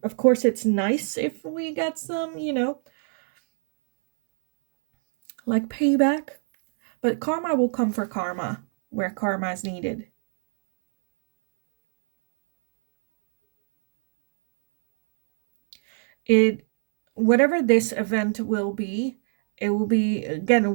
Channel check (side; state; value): left; silent; 60 dB below the other